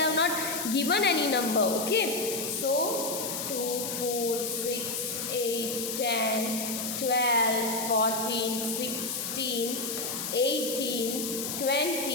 not given any number. Okay, so 2, 4, 6, 8, 10, 12, 14, 16, 18,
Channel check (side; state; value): left; noise; hiss, 4 dB below the sound